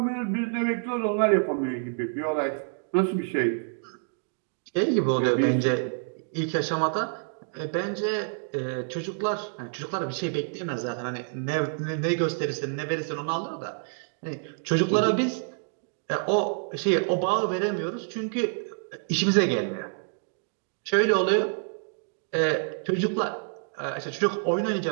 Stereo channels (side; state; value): left; silent; digital silence